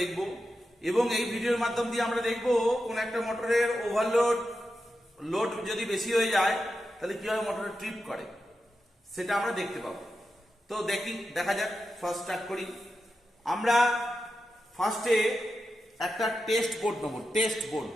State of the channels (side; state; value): both; normal; correlation 0.90